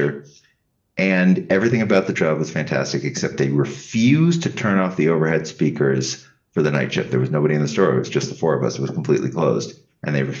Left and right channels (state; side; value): identical; both; correlation 1.00